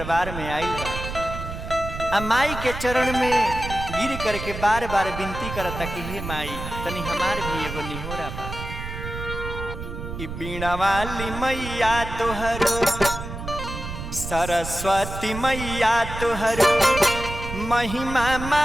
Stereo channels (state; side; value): noise; right; rumble, 8 dB below the sound